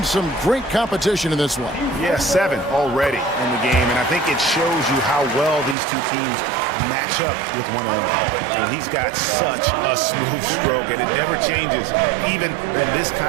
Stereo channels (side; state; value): left; drops out; at 5.8 s